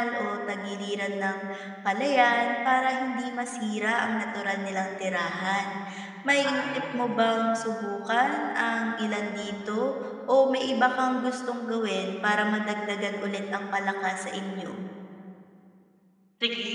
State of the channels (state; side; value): identical; both; correlation 1.00